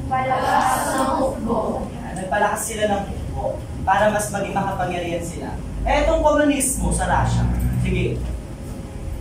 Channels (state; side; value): identical; both; correlation 1.00